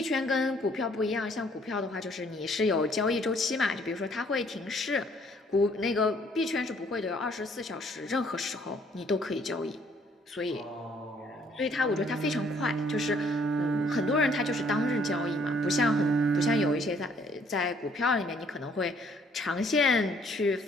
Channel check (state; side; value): normal; both; correlation 0.63